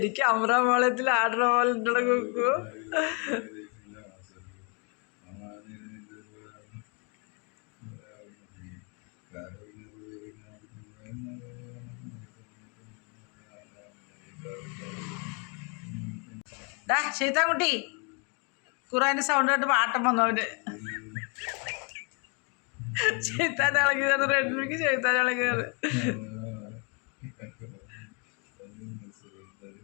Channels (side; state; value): right; quieter; 34.8 dB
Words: അമ്രാമളത്തിൽ ആടുന്ന പോലെ ഉണ്ടല്ലോ കുക്കു. ഡാ ശൈത്താൻകുട്ടി, ഖുറാൻ്റെ സൗണ്ട് കേട്ട് പാട്ടം വന്നു അവന്. ശൈത്താൻ ഇളകിയത് റെഡ്മിക്ക് ശൈത്താൻ ഇളകിയത്.